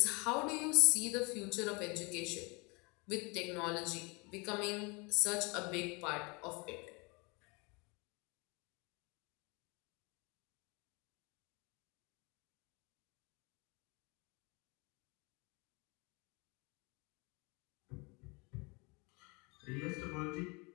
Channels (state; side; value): quieter; right; 28.9 dB